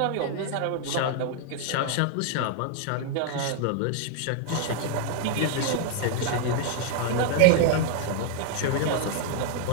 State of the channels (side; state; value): both; different; correlation 0.00